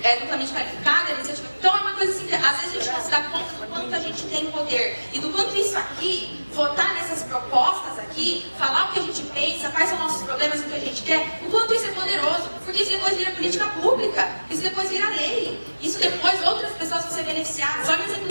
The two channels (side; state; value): both; inverted; correlation -1.00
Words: duplamente qualificado era iniciativa... Então é uma coisa assim, que às vezes a gente não se dá conta do quanto a gente tem poder e do quanto isso aqui, votar nessas propostas aqui, falar o que a gente pensa, quais são nossos problemas, o que a gente quer, o quanto isso é poderoso, porque isso depois vira política pública, isso depois vira lei, isso depois outras pessoas vão ser beneficiadas. Olha o exemplo